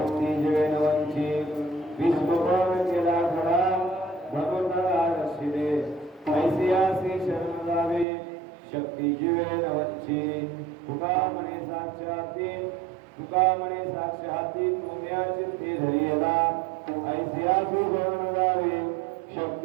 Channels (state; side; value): drops out; left; at 8.1 s